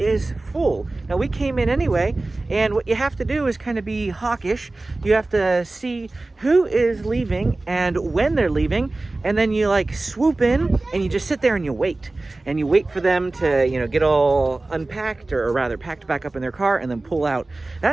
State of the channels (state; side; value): quieter; left; 3.0 dB